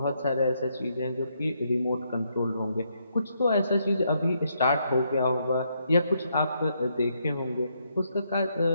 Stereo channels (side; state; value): both; inverted; correlation -0.76